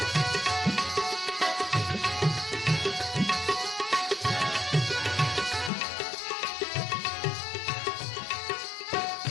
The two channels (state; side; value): drops out; right; at 5.7 s